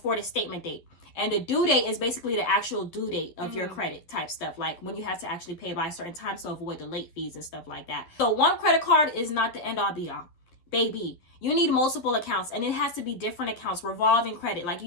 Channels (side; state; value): right; late; 11 ms